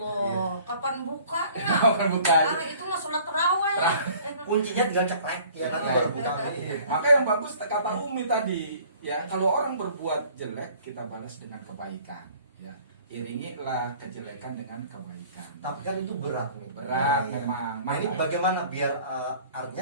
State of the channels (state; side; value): inverted; both; correlation -0.52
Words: kapan bukanya? Kapan bukanya? Itu mah sholat terawih. Kuncinya tinggal ceklek ya, nanti baru buka ini. Maka yang bagus kata Umi tadi, ya kalau orang berbuat jelek kita balas dengan kebaikan, ya. Iringilah kejelekan dengan kebaikan. Tapi kan itu berat nih. Berat Iya. memang. Nah ini bagaimana biar